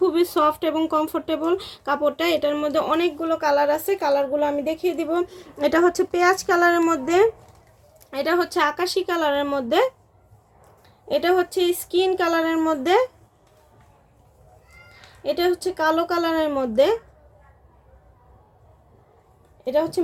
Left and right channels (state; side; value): identical; both; correlation 1.00